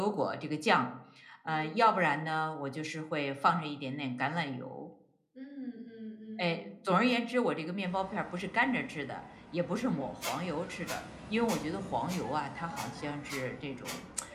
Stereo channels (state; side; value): identical; both; correlation 1.00